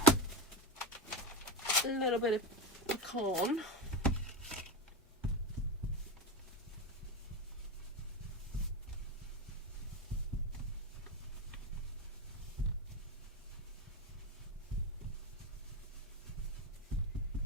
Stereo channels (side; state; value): both; normal; correlation 0.17